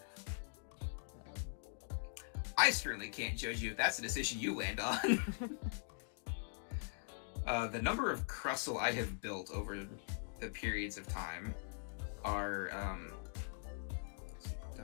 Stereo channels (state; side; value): silent; right; digital silence